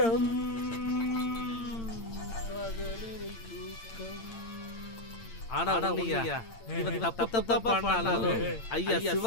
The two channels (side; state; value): right; late; 8.8 ms